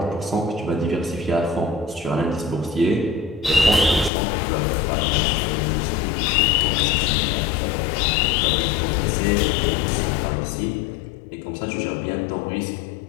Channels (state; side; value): drops out; right; at 4.1 s